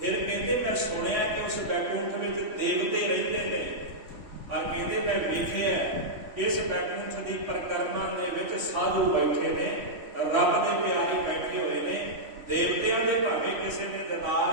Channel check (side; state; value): left; late; 3.6 ms